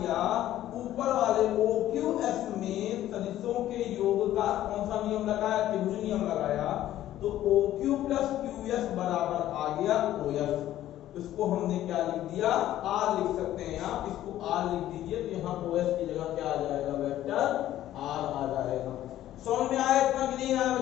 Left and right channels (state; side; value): quieter; right; 13.1 dB